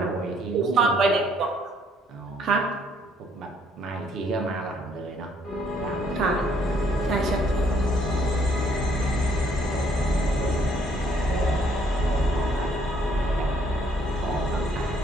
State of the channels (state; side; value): normal; both; correlation 0.66